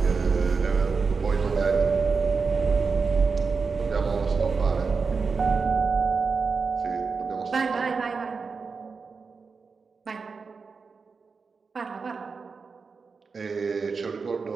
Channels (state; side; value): quieter; left; 4.9 dB